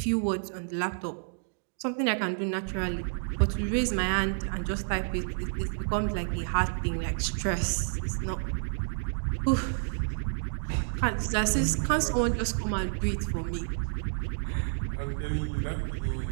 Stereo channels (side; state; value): left; silent; digital silence